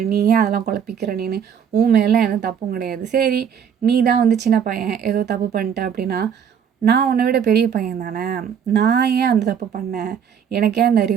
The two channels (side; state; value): left; quieter; 7.9 dB